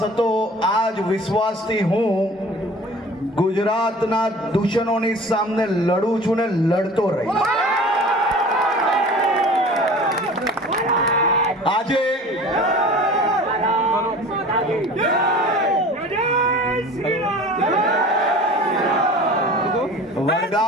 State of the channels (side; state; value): both; normal; correlation 0.42